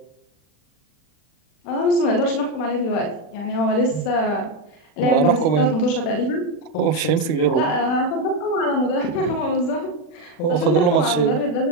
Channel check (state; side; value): late; right; 40 ms